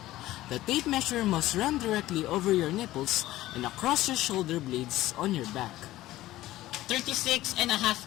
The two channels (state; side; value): quieter; right; 15.8 dB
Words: The tape measure must run directly over your nipples and across your shoulder blades on your back.